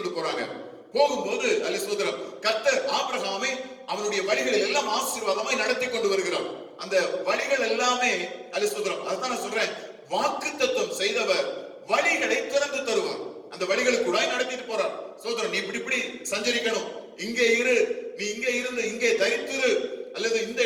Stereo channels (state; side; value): identical; both; correlation 1.00